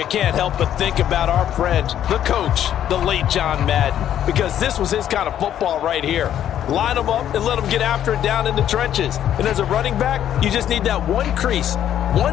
can't help but think about our friend, the coach, the late John Madden, because this was his kind of football right here. Line them up and let them get after it down in the trenches. And as a running back, you just need that one crease,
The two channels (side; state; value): right; quieter; 10.7 dB